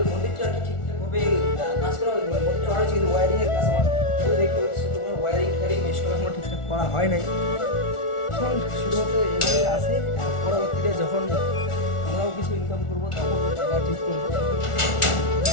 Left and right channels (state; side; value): late; right; 1.4 ms